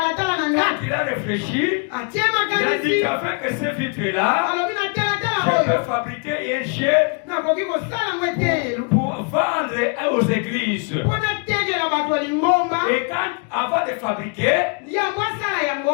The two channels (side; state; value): right; quieter; 37.3 dB